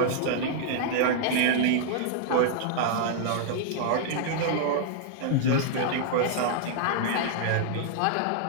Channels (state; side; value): different; both; correlation -0.01